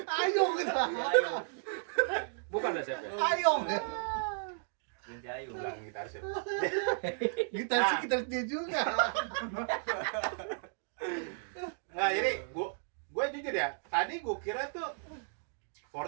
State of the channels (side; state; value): left; silent; digital silence